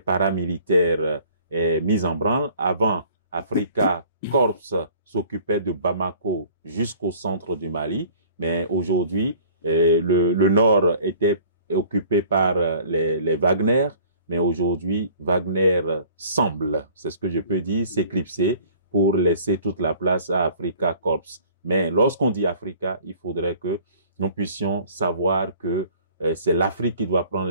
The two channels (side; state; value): both; inverted; correlation -0.51